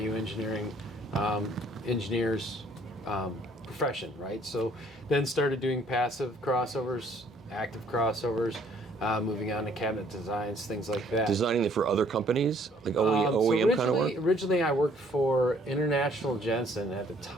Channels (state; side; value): normal; both; correlation 0.61